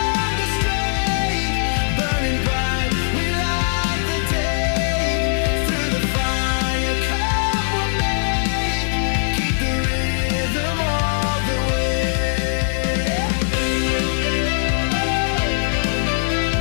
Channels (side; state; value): right; silent; 65 dB below the other